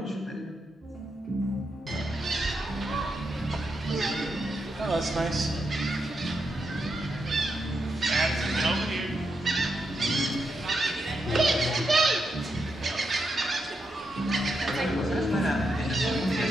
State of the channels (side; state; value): both; normal; correlation 0.84